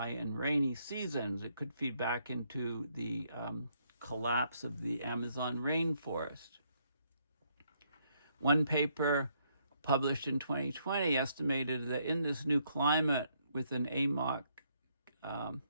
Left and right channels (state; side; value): inverted; both; correlation -0.72